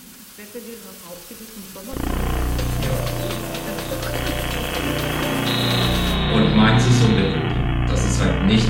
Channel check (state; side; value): identical; both; correlation 1.00